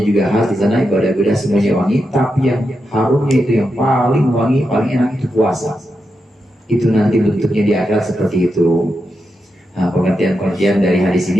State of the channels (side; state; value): both; normal; correlation 0.87